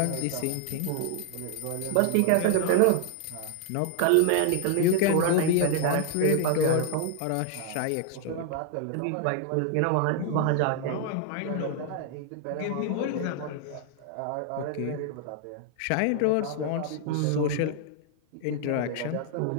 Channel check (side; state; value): both; different; correlation 0.00